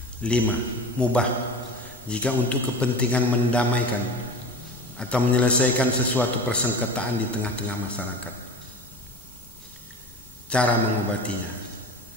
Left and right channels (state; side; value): noise; left; rumble, 24 dB below the sound